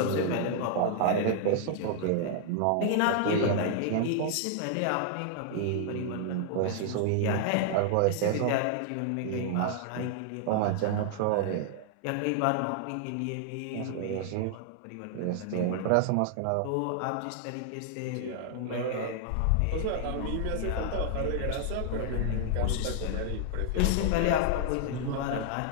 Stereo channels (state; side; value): different; both; correlation 0.00